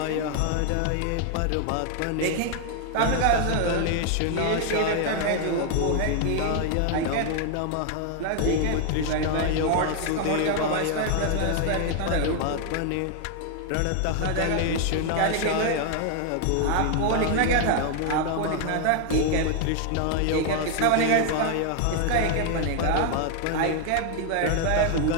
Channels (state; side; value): different; both; correlation 0.00